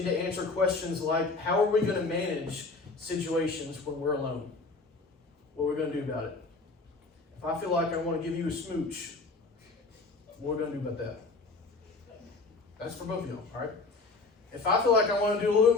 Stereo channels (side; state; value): right; quieter; 3.7 dB